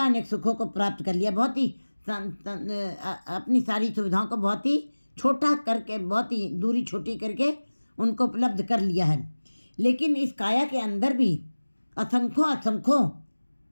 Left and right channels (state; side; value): inverted; both; correlation -1.00